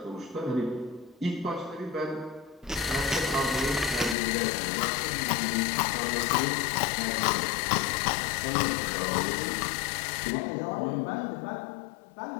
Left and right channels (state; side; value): drops out; right; at 4.2 s